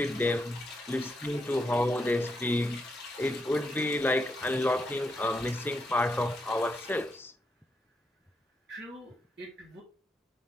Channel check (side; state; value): both; normal; correlation 0.81